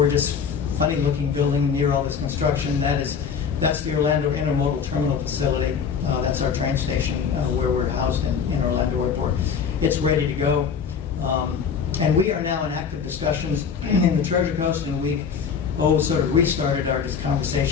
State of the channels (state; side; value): quieter; right; 6.6 dB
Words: funny-looking building near all this construction, that's the Orlando Intermodal Terminal Facility. That's our train station where we're housed in Orlando Airport. It's ready to go. And we are now in active discussions in the Treasure Coast, and we've sort of restarted our